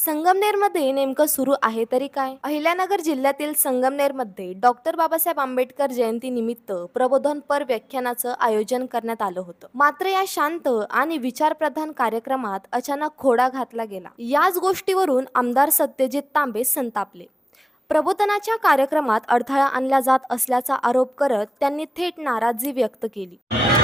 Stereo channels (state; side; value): normal; both; correlation 0.96